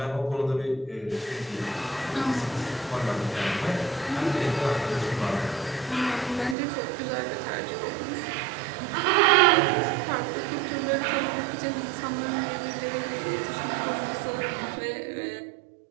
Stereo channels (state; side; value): drops out; left; at 6.6 s